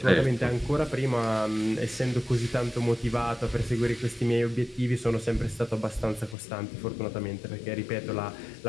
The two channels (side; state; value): right; drops out; at 6.4 s